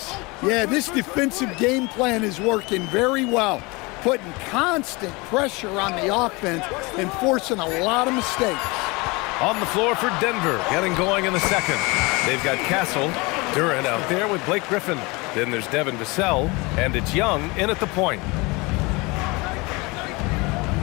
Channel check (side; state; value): right; quieter; 25.7 dB